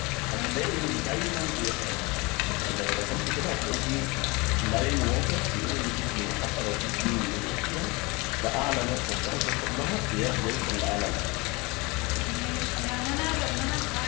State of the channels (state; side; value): quieter; right; 25.7 dB